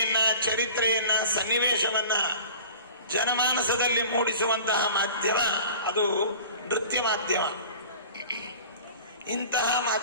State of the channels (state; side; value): inverted; both; correlation -0.41